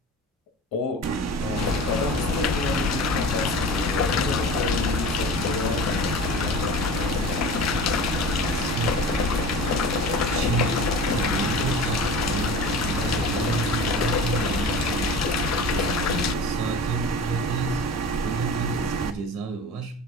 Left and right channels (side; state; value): both; normal; correlation 0.36